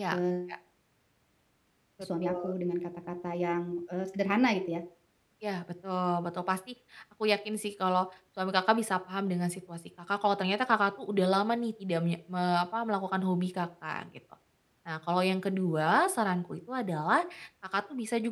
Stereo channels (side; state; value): both; identical; correlation 1.00